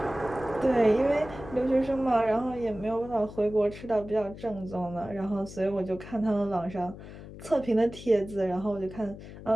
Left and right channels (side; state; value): left; noise; hum, 14 dB below the sound